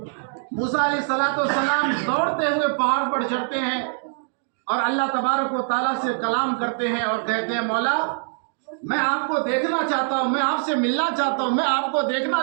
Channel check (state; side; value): silent; left; digital silence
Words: موسیٰ علیہ السلام دوڑتے ہوئے پہاڑ پر چڑھتے ہیں اور اللہ تبارک و تعالیٰ سے کلام کرتے ہیں اور کہتے ہیں، مولا میں آپ کو دیکھنا چاہتا ہوں، میں آپ سے ملنا چاہتا ہوں، میں آپ کو دیکھنا